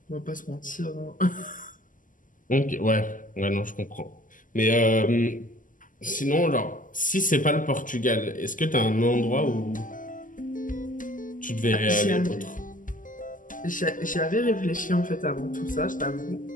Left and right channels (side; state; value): right; late; 0.38 ms